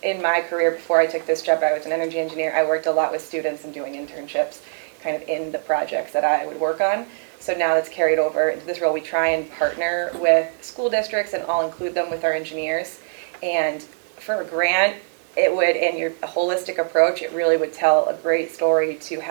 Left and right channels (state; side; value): silent; left; digital silence